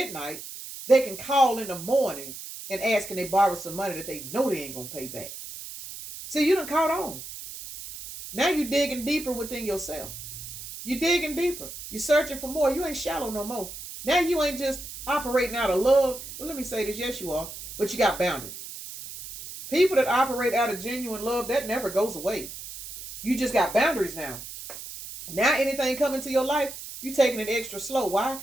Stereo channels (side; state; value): right; noise; hiss, 11 dB below the sound